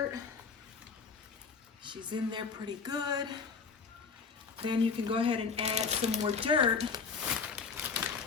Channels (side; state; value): right; quieter; 5.4 dB